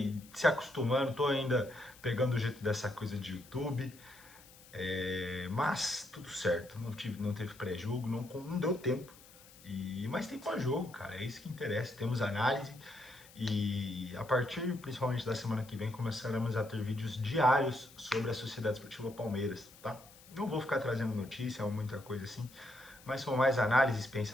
se acostumando, tô ainda pegando o jeito dessa coisa de YouTube, mas tudo certo, não teve pré-jogo, não deu tempo, mas tem pós-jogo, cara, é isso que interessa, temos análise e a partir principalmente da semana que vem começaremos a ter vídeos diários sobre a Sociedade Esportiva Palmeiras, tá? Não vou ficar trazendo notícia ou muita coisa assim, mas são mais análises,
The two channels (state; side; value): noise; left; hiss, 22 dB below the sound